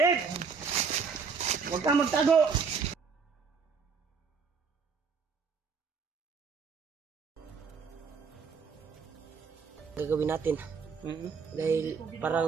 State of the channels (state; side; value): quieter; left; 5.6 dB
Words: Huwag kang magtago! gagawin natin. Dahil